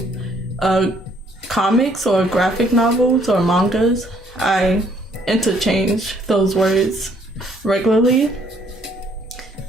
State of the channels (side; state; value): both; normal; correlation 0.65